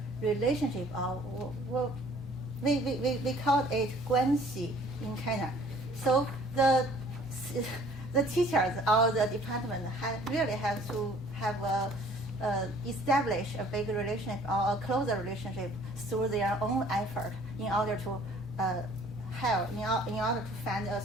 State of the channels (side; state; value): both; normal; correlation 0.54